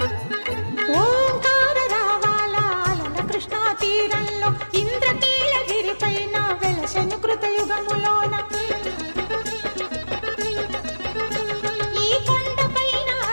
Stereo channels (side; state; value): both; inverted; correlation -1.00